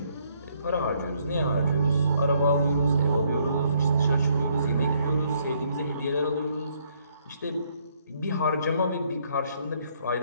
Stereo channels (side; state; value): both; inverted; correlation -0.68